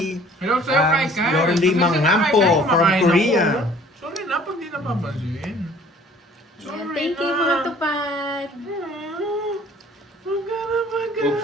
Hello sa'yo, Kai Kai. Lauren Lee Kasi Manghampo Kai Kai, from kumakain Korea. ako. Sorry na, pag di napapansin. Yan. Sorry Thank you na. mga tupad. Huwag ka na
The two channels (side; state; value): both; normal; correlation 0.53